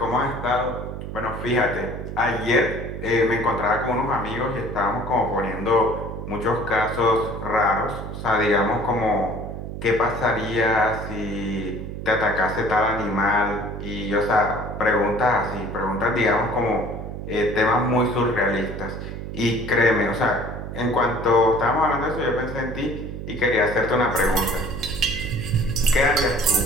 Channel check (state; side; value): noise; right; hum, 8 dB below the sound